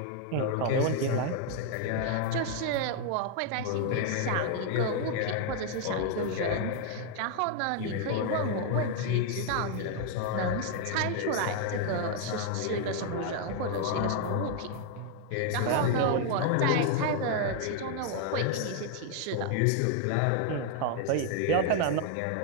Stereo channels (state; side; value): different; both; correlation 0.00